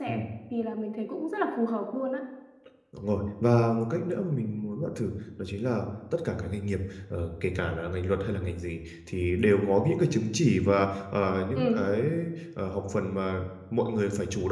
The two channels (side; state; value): both; identical; correlation 1.00